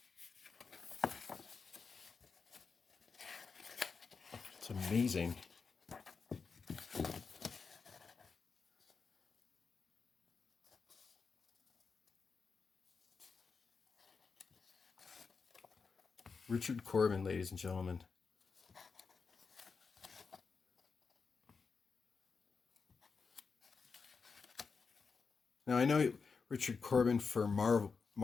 It's amazing. Richard Corben, ladies and gentlemen. Now I know Richard Corben for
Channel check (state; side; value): quieter; right; 5.1 dB